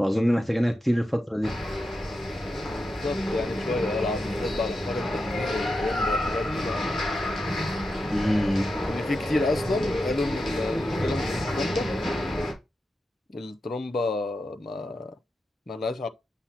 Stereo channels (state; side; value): normal; both; correlation 0.88